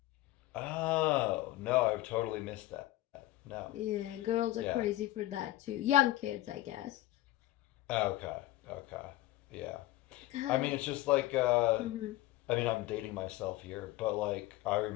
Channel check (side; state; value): right; quieter; 16.3 dB